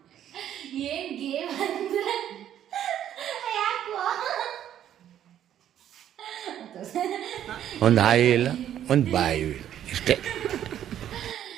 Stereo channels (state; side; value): quieter; left; 10.7 dB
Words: ಏನ್ ಗೇಮ್ ಅಂದ್ರೆ ಒಂದು ಹಾಯಿ ಇಲ್ಲ ಒಂದು ಬಾಯಿ ಇಲ್ಲ ಇಷ್ಟೇ.